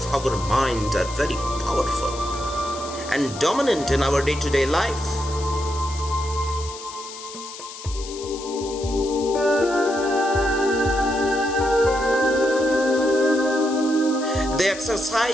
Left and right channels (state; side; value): noise; left; hiss, 13 dB below the sound